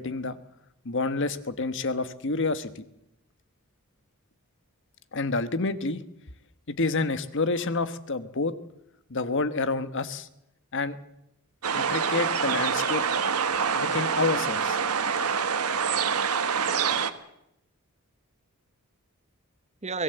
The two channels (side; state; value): both; normal; correlation -0.10